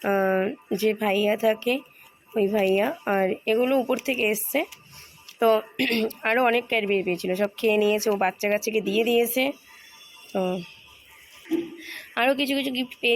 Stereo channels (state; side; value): identical; both; correlation 1.00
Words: যে ভাইয়া থাকে, ওই ভাইয়া। আর এগুলো উপর থেকে এসছে। তো আরও অনেক ক্যাডবেরি পেয়েছিল, সব খেয়ে নিয়েছে, ও বাচ্চা কাচ্চাকে দিয়ে দিয়েছে। তো আরও কিছু কিছু গিফট